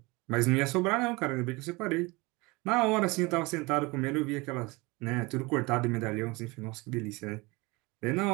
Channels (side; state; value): left; quieter; 24.6 dB